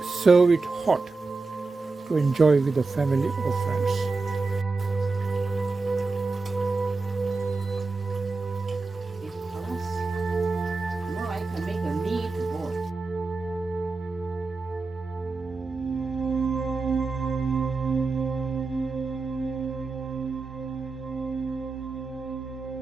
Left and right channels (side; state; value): left; quieter; 3.9 dB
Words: Serve it hot to enjoy with the family or friends. Because more I can make a meatball.